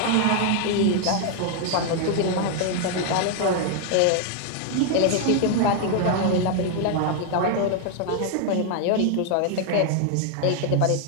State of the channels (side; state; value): both; different; correlation 0.00